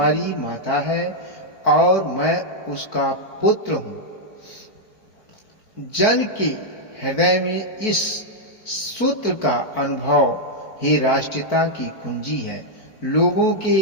माता है और मैं उसका पुत्र हूँ। जन के हृदय में इस सूत्र का अनुभव ही राष्ट्रीयता की कुंजी है। लोगों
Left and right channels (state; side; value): late; right; 4.5 ms